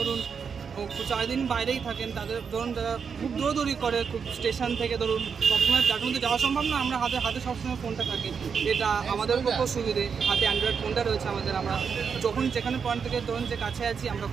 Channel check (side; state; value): left; quieter; 6.3 dB